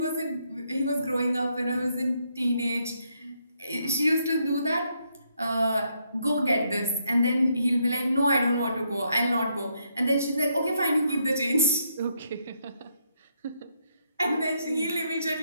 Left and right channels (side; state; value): both; inverted; correlation -0.76